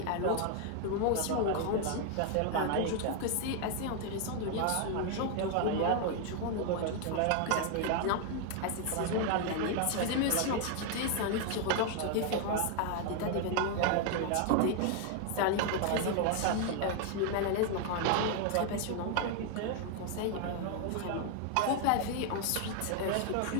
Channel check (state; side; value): different; both; correlation 0.00